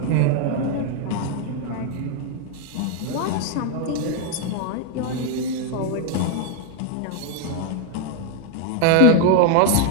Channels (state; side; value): different; both; correlation 0.01